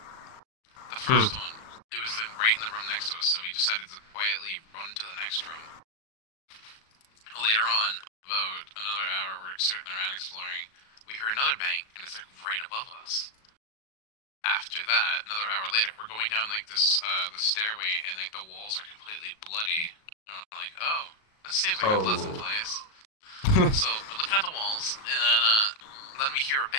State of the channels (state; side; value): late; right; 37 ms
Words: The first one, it was right in the room next to us, so we decided to quietly run to the next room. Later on, about another hour, we're sitting around exploring, we hear another bang, and it's, like, right above us. After that, another hour later, we're going down like this the stairway, and like the walls are completely bloody. And I'm like, oh, that seems like a pleasant place. So we're looking at the walls, and then we hear a